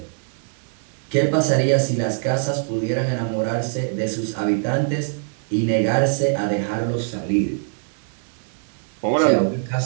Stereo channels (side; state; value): left; silent; 64 dB below the other